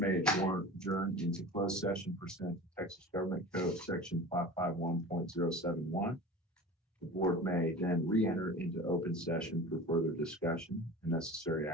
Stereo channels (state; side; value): normal; both; correlation 0.36